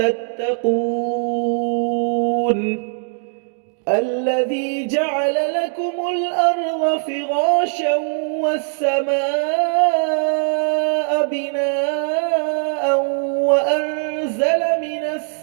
الذي جعل لكم الأرض فراشا والسماء بناء وأنزل من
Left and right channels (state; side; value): silent; left; digital silence